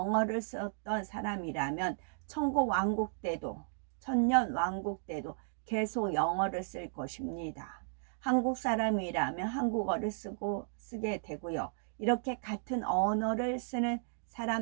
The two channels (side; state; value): left; silent; digital silence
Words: 썼던 사람이라면 천국 왕국 때도 천년 왕국 때도 계속 영어를 쓸 것입니다. 한국 사람이라면 한국어를 쓰게 되고요. 이렇게 같은 언어를 쓰는